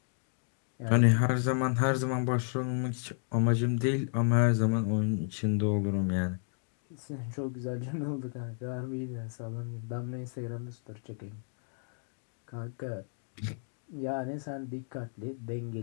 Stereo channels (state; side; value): silent; right; 56 dB below the other